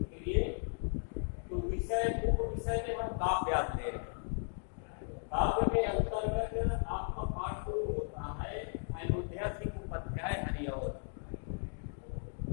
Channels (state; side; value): silent; right; 54 dB below the other